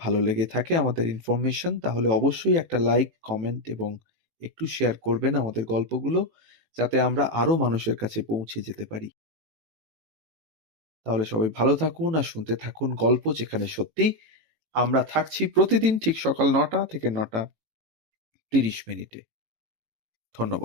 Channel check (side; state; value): left; late; 18 ms